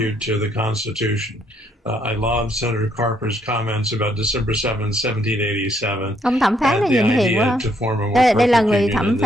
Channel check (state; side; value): normal; both; correlation 0.71